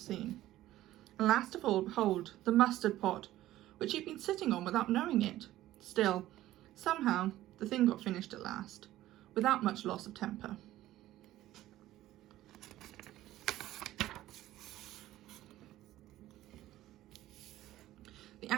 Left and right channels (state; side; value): quieter; left; 14.8 dB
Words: and last of all, behold, the mustard pot, which he'd been sitting on without knowing it. Still, somehow, the thing got finished at last, without much loss of temper. The